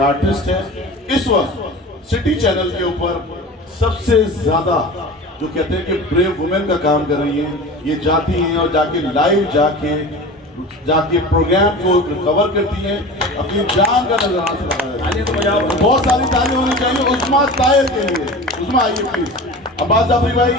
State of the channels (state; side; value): normal; both; correlation 0.34